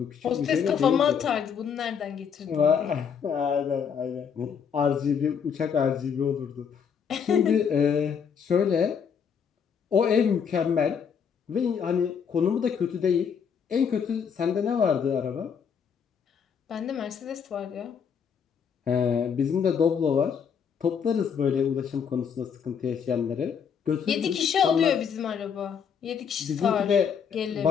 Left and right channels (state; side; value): quieter; right; 7.0 dB